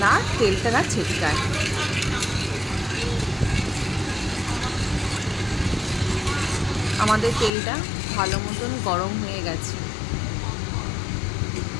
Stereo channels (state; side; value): drops out; right; at 7.5 s